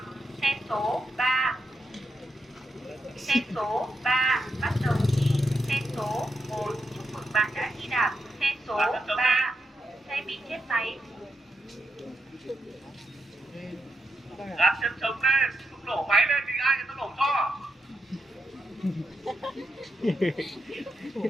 Xe số 3. Xe số 3 bắt đầu thi. Xe số 1 chúc mừng bạn đã thi đạt. Xe số 3 xe bị chết máy. Đặt chân chống lên, không nổ máy lên thì ai người ta nổ cho.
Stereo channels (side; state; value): both; normal; correlation 0.83